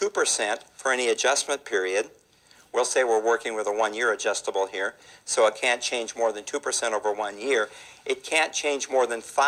for any adjustment period. We'll say we're working with a 1-year adjustable here, so it can't change more than 2% over 1 year. It can't change more than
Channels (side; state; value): both; identical; correlation 1.00